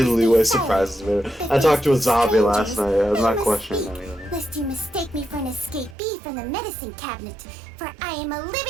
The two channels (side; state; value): left; drops out; at 6.0 s